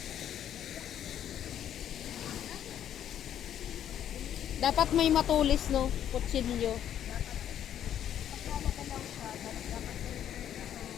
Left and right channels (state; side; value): quieter; right; 10.3 dB